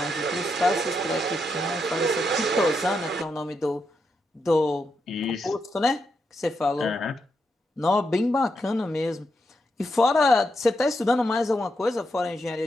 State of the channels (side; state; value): both; normal; correlation 0.83